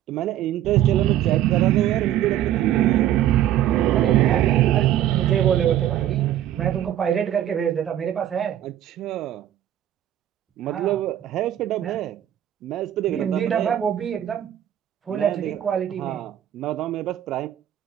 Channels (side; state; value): left; quieter; 11.7 dB